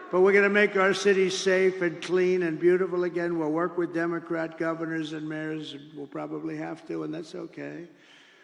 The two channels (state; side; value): identical; both; correlation 1.00